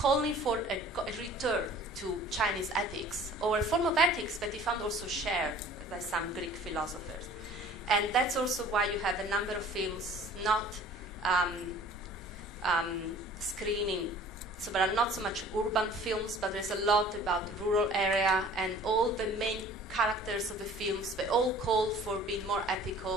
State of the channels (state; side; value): normal; both; correlation 0.48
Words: for a return to Chinese ethics, or a form of ethics that he found also shared by some Greek philosophers. And that's also why you have a number of films not screening. So there are not so much urban films, but there's a lot about rural area, and all the main characters of the films, they all call for being more